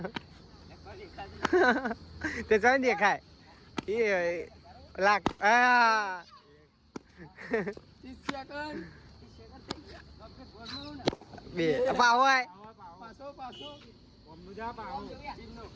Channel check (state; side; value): identical; both; correlation 1.00